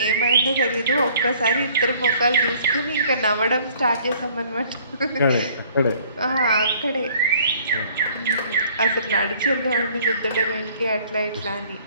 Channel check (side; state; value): both; inverted; correlation -0.57